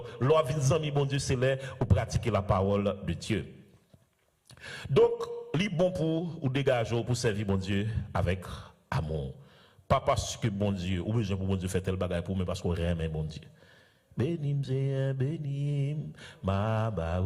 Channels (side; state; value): both; identical; correlation 1.00